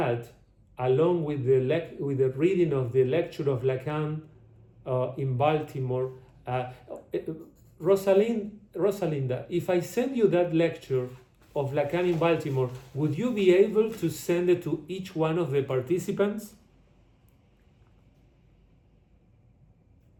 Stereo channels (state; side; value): identical; both; correlation 1.00